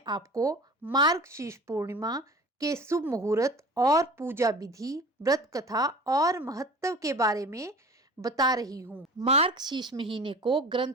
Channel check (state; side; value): normal; both; correlation 0.39